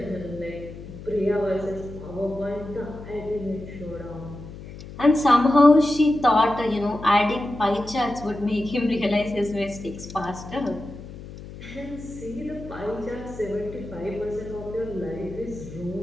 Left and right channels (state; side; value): noise; left; hum, 14 dB below the sound